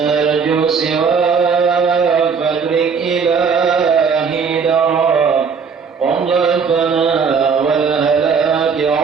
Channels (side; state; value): left; quieter; 5.8 dB